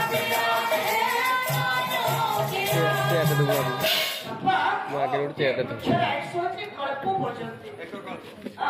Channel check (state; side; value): identical; both; correlation 1.00